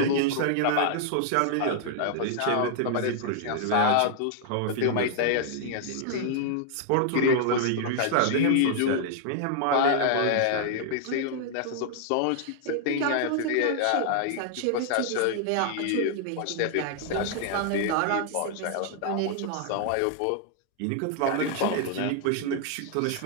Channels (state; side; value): different; both; correlation 0.00